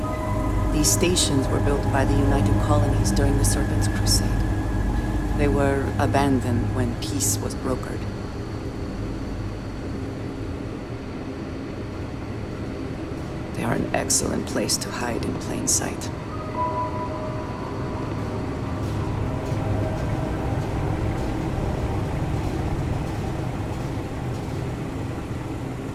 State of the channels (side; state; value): both; identical; correlation 1.00